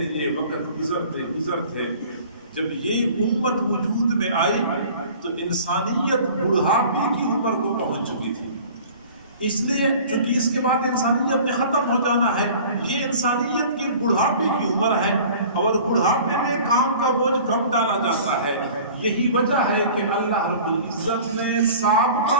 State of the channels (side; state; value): both; inverted; correlation -0.45